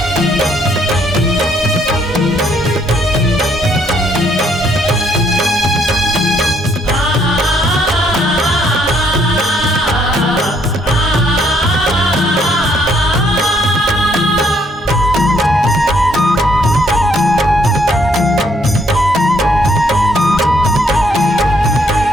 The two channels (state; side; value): normal; both; correlation 0.69